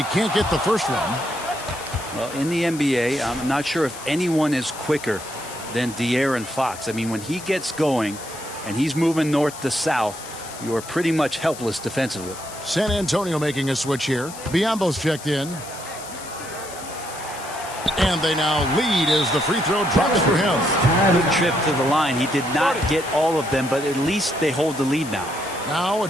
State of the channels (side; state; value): left; noise; hiss, 14 dB below the sound